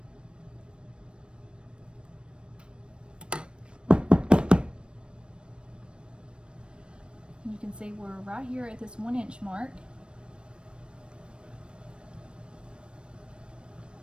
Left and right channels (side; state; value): left; late; 0.056 ms